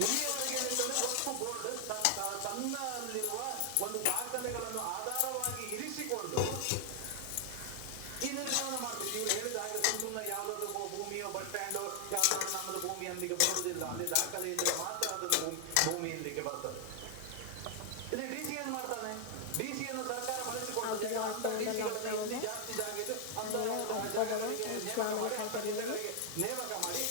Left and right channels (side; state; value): both; different; correlation 0.00